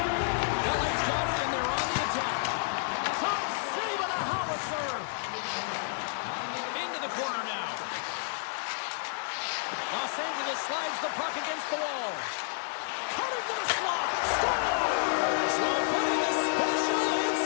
LA's got it, and they're on the attack. Top save on a howitzer. Into the corner now. Los Angeles slides the puck against the wall. Cutting to the slot. Scores! Well, putting the special in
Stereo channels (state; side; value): silent; right; digital silence